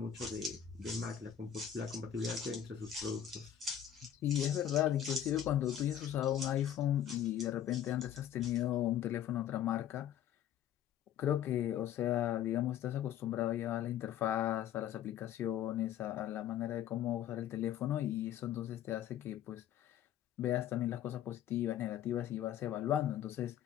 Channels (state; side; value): quieter; right; 10.3 dB